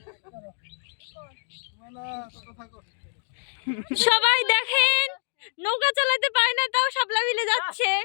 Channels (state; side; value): silent; right; digital silence